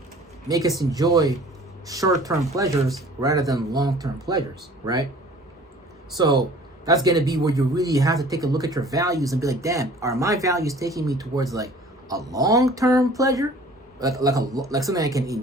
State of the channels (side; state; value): both; normal; correlation 0.49